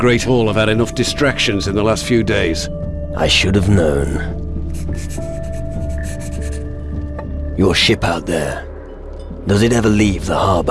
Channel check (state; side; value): identical; both; correlation 1.00